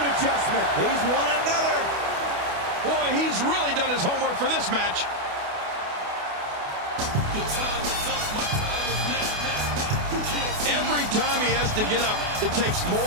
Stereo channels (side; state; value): left; late; 28 ms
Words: adjustment. He's won another. Boy, he's really done his homework for this match. Every time he has to get up, it takes